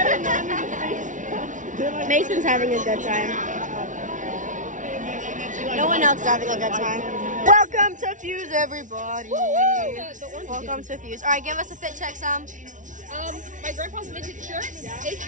Mason's having a good time. No one else is having a good time. Welcome to Fuse, everybody. Welcome to Fuse. All right, give us a fit check, Sam. My grandpa's vintage shirt,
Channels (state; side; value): late; left; 0.37 ms